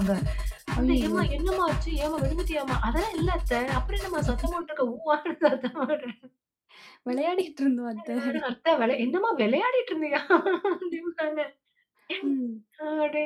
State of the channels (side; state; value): both; identical; correlation 1.00